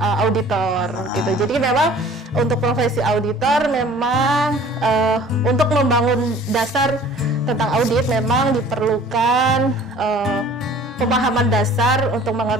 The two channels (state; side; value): normal; both; correlation 0.49